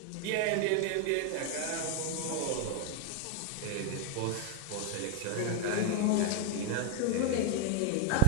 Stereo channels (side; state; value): both; different; correlation 0.02